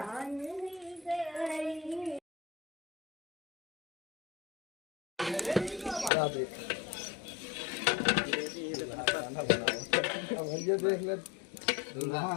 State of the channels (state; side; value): drops out; right; at 6.1 s